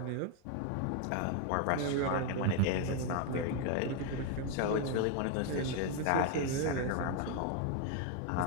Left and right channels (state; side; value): different; both; correlation 0.01